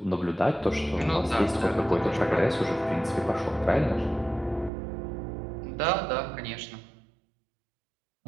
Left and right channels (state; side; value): drops out; left; at 4.7 s